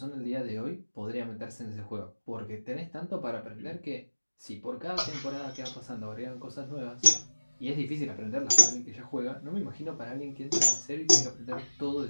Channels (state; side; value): inverted; both; correlation -1.00